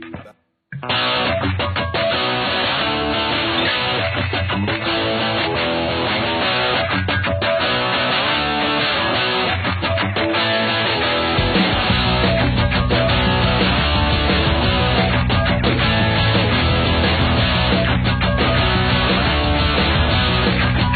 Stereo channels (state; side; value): identical; both; correlation 1.00